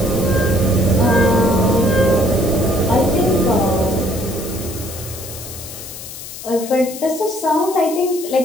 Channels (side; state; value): left; noise; hiss, 12 dB below the sound